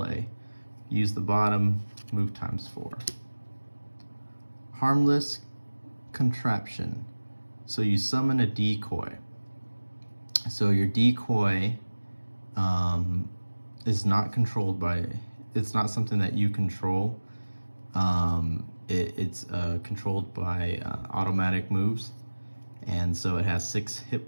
Use the bottom, move times 4. Harmless Contraption. So you summon a decoy. So your decoy is not controlled by, it's not something that you control. It's controlled by automatic moves, and so it has 6 hit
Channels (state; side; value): inverted; both; correlation -1.00